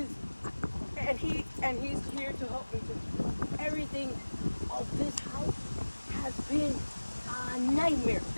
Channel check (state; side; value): inverted; both; correlation -1.00